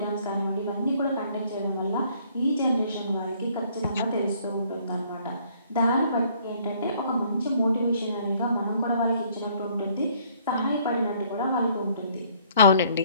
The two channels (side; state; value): both; inverted; correlation -0.62